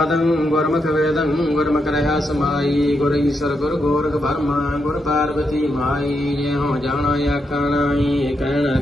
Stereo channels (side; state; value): both; normal; correlation 0.83